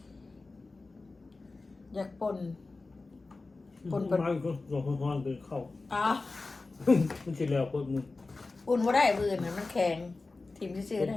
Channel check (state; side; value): quieter; right; 3.6 dB